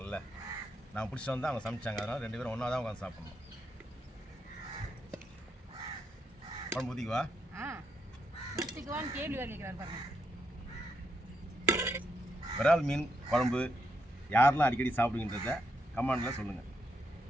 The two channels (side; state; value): both; normal; correlation 0.80